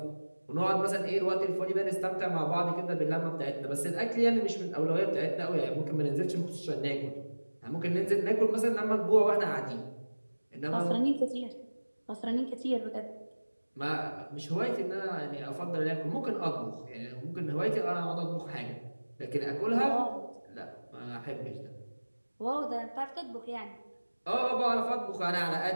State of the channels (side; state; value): both; inverted; correlation -1.00